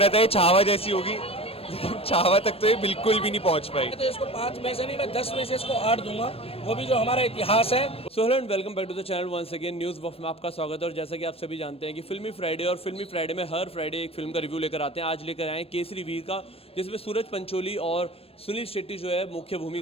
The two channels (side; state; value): right; late; 0.28 ms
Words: था ये छावा जैसी होगी, लेकिन छावा तक तो ये बिल्कुल भी नहीं पहुंच पाई। तो इसको 5 में से नहीं, मैं 10 में से इसको 8 दूंगा, वो भी जो हमारा इतिहास है। So hello and welcome back to the channel once again news buff में आपका स्वागत है। और जैसा कि आप सभी जानते हैं कि फिल्मी फ्राइडे और फिल्मी फ्राइडे में हर फ्राइडे एक फिल्म का रिव्यू लेकर आते हैं। आज लेकर आए हैं केसरी वीर का, जिसमें सूरज पंचोली और सुनील शेट्टी जो है मुख्य